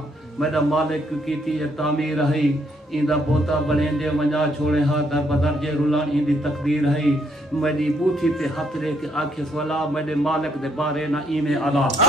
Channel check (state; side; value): normal; both; correlation 0.72